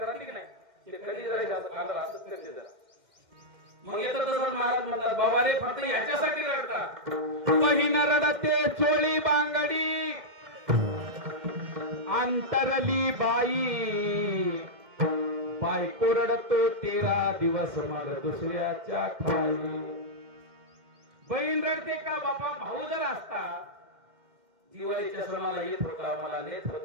राहते की नाही ते कधी जरा जास्त कांदा असंच करते जरा. मग येतं तसं महाराज म्हणतात बाबा रे फक्त याच्यासाठी रडतात. बहीण रडते चोळी बांगडी अंतरली बाई. बायको रडतो 13 दिवस मग दुसऱ्याच्या खाई. बहीण रडते का बाबा भाऊ जर असता दिवाळीच्या सणाला येत होता मला नेत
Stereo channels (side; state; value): left; late; 2.1 ms